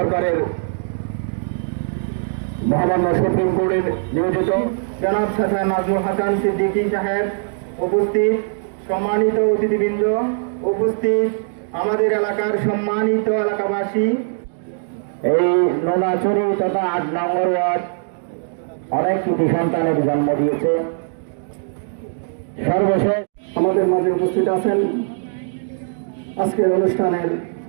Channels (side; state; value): left; silent; digital silence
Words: মহামান্য সুপ্রিম কোর্টের নিয়োজিত জনাব শাহ নাজমুল হাসান সিদ্দিকী সাহেব উপস্থিত, সম্মানিত অতিথিবৃন্দ উপস্থিত, আমাদের এলাকার সম্মানিত এলাকাবাসী, এই নোনাচুরি তথা ৮ নম্বর ওয়ার্ড অনেক কৃতি সন্তানের জন্ম দিয়েছে। সর্বশেষ আমাদের মাঝে উপস্থিত আছেন আজকের অনুষ্ঠানের